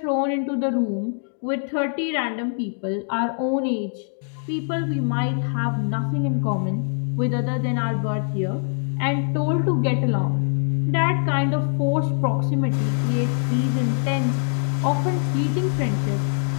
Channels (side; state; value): right; silent; 63 dB below the other